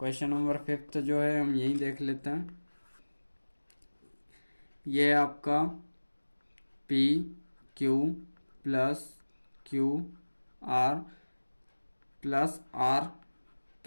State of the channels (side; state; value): both; inverted; correlation -1.00